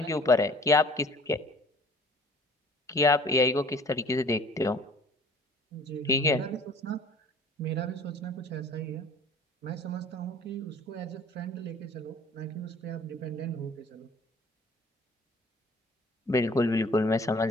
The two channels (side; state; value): both; normal; correlation 0.51